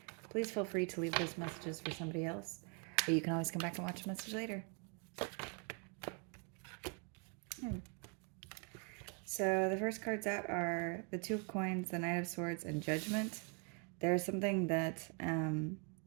please feel free to leave those messages for somebody else. Or you can always come back and watch the message later. So the first cards out are the Two of Coins, the Knight of Swords, and Judgment. There's something that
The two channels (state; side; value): quieter; left; 37.7 dB